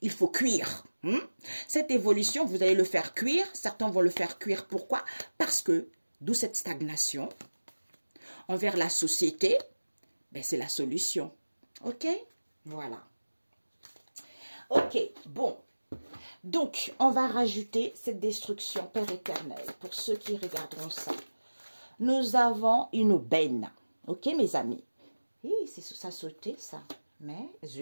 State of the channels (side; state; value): both; inverted; correlation -1.00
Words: il faut cuire. Cette évolution, vous allez le faire cuire. Certains vont le faire cuire. Pourquoi? Parce que, d'où cette stagnation envers la société, ben c'est la solution. Ok? Voilà. Ok, bon. Donc, on va rajouter cette destruction, Père éternel, pour ceux qui regarderont ça. Nous avons une benne. Ok, mes amis? C'est ça sauté, ça. Mais,